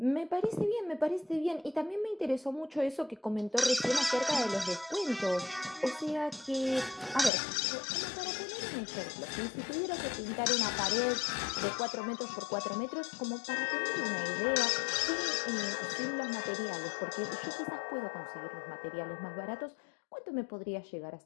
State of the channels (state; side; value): drops out; right; at 7.3 s